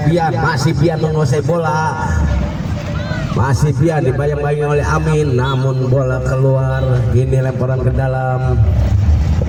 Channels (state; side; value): identical; both; correlation 1.00